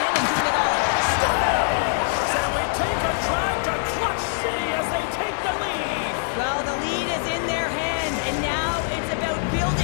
in and doing it all. And we take a drive to Clutch City as they take the lead. Well, the lead is in their hands, and now it's about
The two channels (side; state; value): right; silent; 63 dB below the other